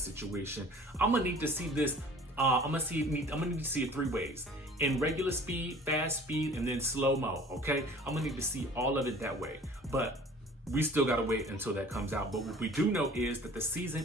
situation, I'm gonna need to see this. I'm gonna need to see it three ways: in regular speed, fast speed, and then slow mo. Okay, I'm gonna need to see all of it that way. But we still gotta wait until that comes out. But what we do know is that the season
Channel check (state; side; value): normal; both; correlation 0.48